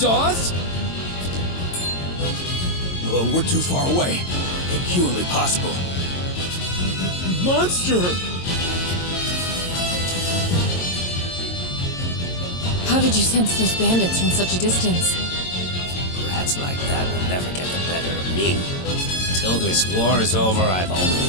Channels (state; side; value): late; right; 22 ms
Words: us? Well, we're too far away. Inhumanly possible. Monster! How did you sense those bandits from such a distance? Rats like that will never get the better of me. Till this war is over, I've